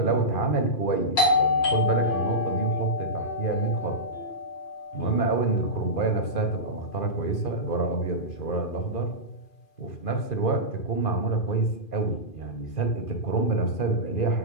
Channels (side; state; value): right; late; 2.4 ms